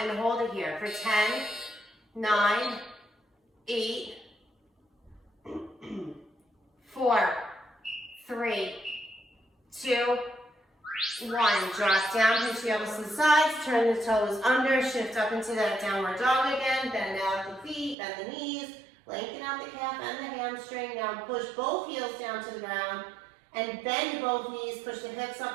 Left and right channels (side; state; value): left; drops out; at 17.9 s